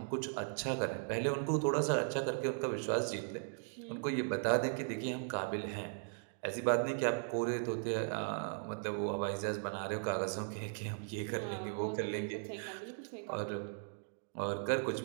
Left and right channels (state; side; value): silent; left; digital silence